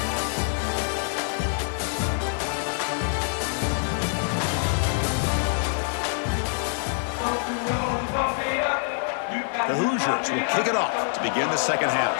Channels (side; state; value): right; silent; 61 dB below the other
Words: The Hoosiers will kick it off to begin the second half.